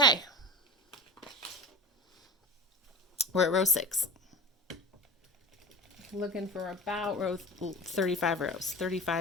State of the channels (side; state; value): both; normal; correlation 0.31